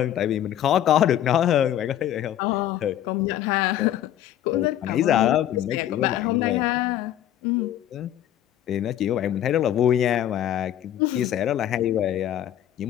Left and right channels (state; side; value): quieter; right; 11.6 dB